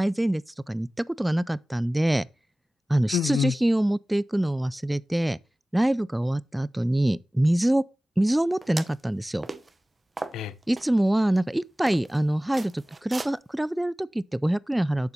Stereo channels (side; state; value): both; normal; correlation 0.98